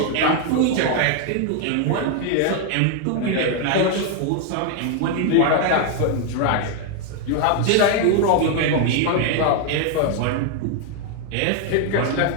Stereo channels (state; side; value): different; both; correlation 0.00